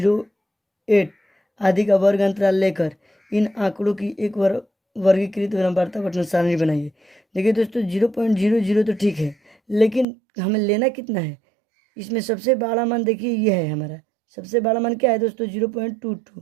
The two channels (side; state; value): left; drops out; at 10.1 s